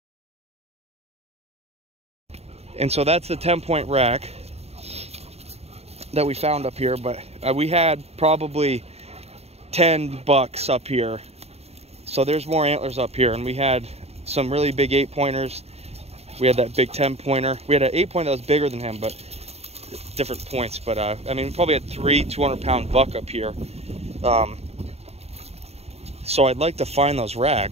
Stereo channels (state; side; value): late; left; 0.30 ms